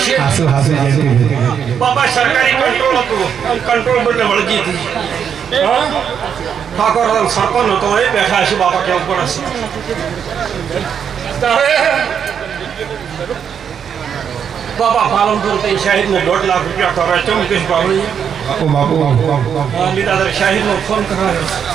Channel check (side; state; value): left; quieter; 7.8 dB